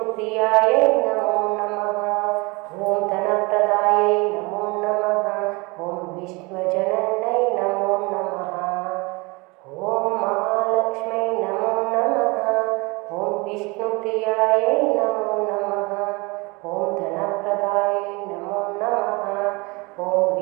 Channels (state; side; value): quieter; left; 26.6 dB